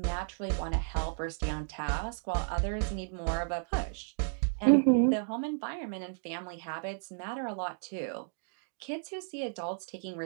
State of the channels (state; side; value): silent; left; digital silence